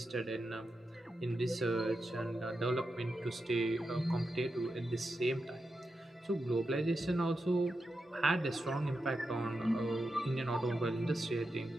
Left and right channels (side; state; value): both; normal; correlation 0.88